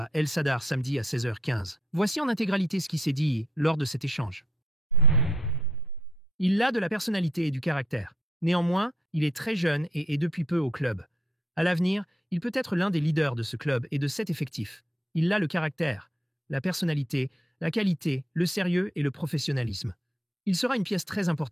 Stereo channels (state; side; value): normal; both; correlation 0.71